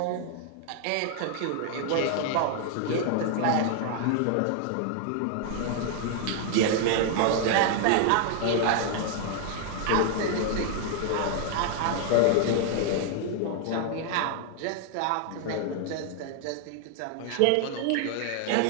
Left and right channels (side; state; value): both; different; correlation 0.00